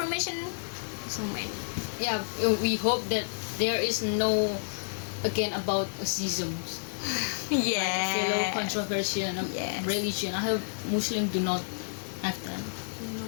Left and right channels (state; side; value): silent; right; 58 dB below the other